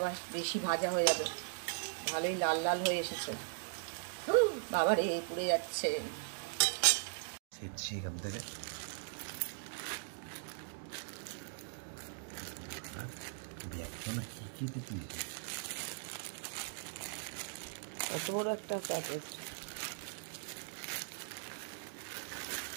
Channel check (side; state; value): left; silent; digital silence